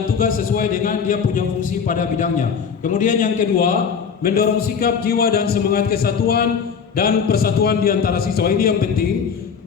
tugas sesuai dengan dia punya fungsi pada bidangnya. Kemudian yang kedua, mendorong sikap, jiwa dan semangat kesatuan dan persatuan di antara siswa. Ini yang penting.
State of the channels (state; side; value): quieter; right; 6.5 dB